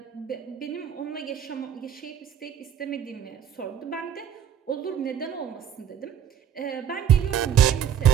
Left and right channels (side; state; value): left; quieter; 9.1 dB